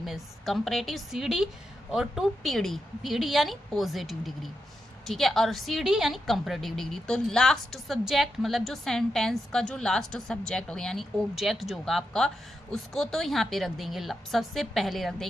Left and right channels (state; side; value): normal; both; correlation 0.86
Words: में, कंपैरेटिव सीडी और टू पीडी यानी पॉजिटिव डिग्री, ठीक है, और सीडी यानी कंपैरेटिव डिग्री। तो लास्ट सब्जेक्ट मतलब जो सेंटेंस का जो लास्ट सब्जेक्ट होगा यानी ऑब्जेक्ट जो होगा आपका, उसको तो यहाँ पे रख देंगे, सबसे पहले रख